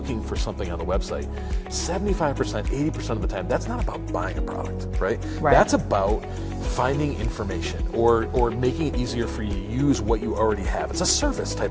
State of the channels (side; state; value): both; identical; correlation 1.00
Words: for something on the website, 75%, 80% of the time, that's not about buying a product, right? That's about finding information or making it easier for you to use what you already have. It's a service